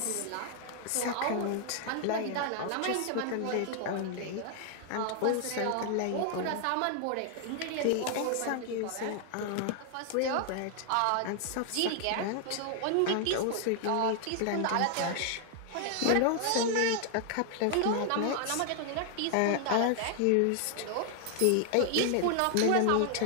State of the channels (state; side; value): different; both; correlation 0.00